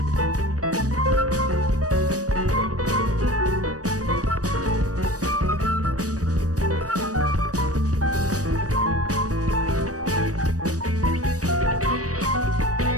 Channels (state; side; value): late; left; 0.66 ms